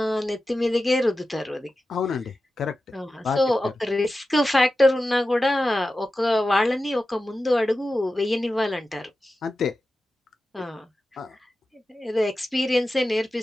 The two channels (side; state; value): both; normal; correlation 0.93